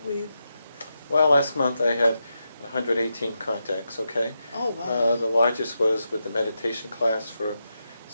we, Well, last month I had 118 contacts, okay? oh, wow. The largest was with the meditation class for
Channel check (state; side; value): inverted; both; correlation -0.87